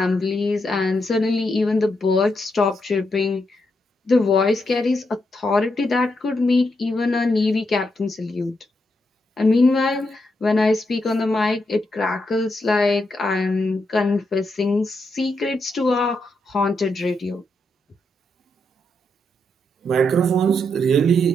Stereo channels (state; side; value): normal; both; correlation 0.82